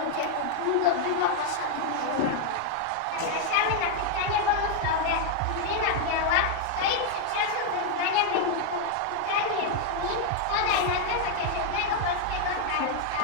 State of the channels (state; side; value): different; both; correlation 0.00